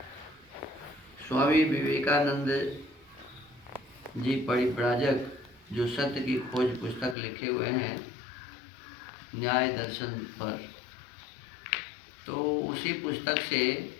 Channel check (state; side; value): drops out; right; at 7.2 s